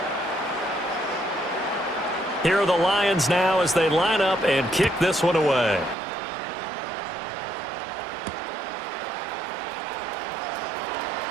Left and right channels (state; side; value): drops out; left; at 6.0 s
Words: Here are the Lions now as they line up and kick this one away.